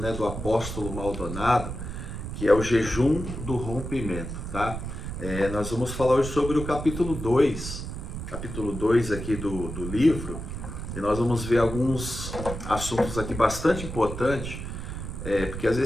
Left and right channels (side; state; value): right; noise; rumble, 7 dB below the sound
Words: do apóstolo Maldonado, que é o jejum do rompimento, tá? Nós vamos falar hoje sobre o capítulo 2 aqui do livro, e nós vamos ver alguns assuntos aqui bastante importantes, porque às